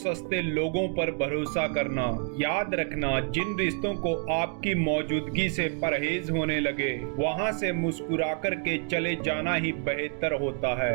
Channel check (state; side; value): quieter; left; 37.3 dB